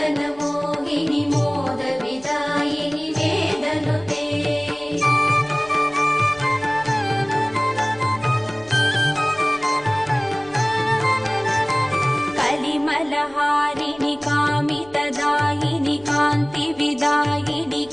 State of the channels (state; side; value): noise; left; rumble, 25 dB below the sound